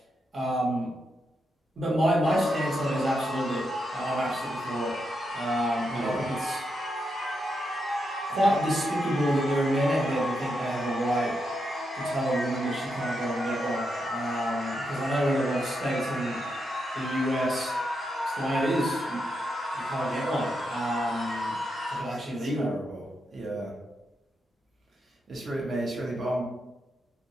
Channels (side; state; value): both; normal; correlation 0.83